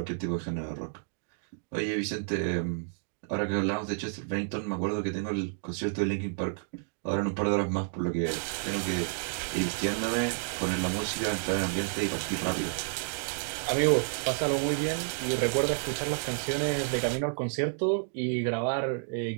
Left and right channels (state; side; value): silent; left; digital silence